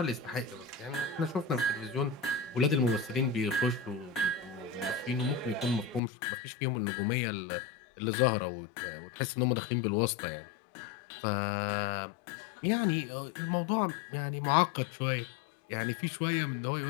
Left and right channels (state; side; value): drops out; right; at 6.0 s